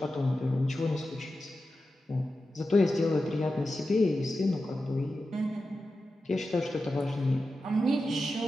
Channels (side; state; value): both; normal; correlation 0.92